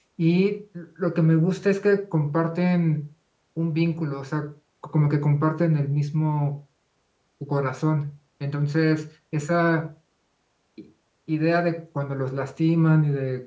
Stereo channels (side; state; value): both; identical; correlation 1.00